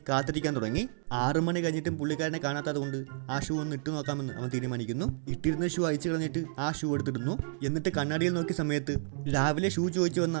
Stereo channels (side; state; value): left; silent; digital silence